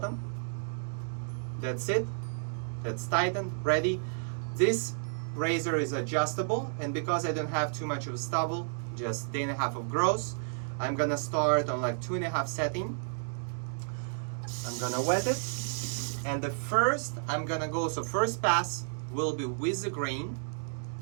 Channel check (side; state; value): left; silent; digital silence